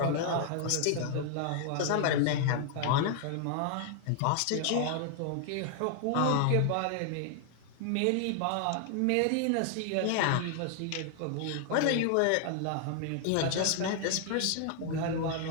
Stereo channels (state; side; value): different; both; correlation 0.00